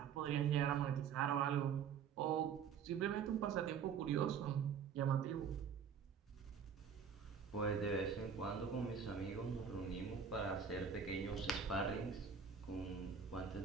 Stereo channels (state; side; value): quieter; left; 7.0 dB